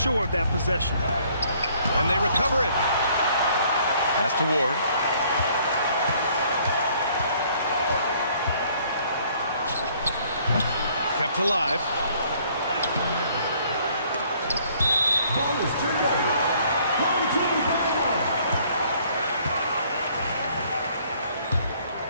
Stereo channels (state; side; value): inverted; both; correlation -0.61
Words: of that possession. And they recover it. Pass to Ward. Kept alive. Ball is turned over. Home team foul.